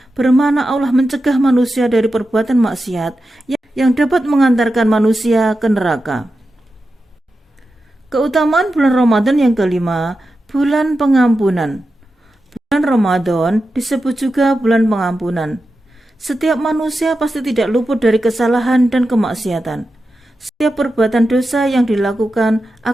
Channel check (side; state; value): both; normal; correlation 0.91